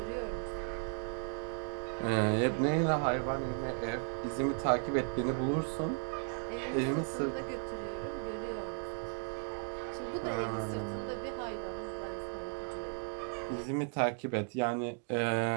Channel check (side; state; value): left; silent; 54 dB below the other